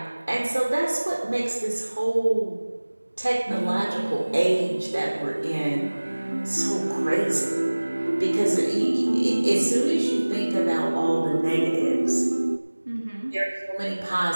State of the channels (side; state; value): both; inverted; correlation -1.00